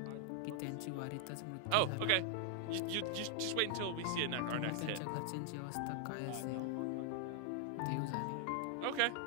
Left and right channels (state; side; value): different; both; correlation 0.00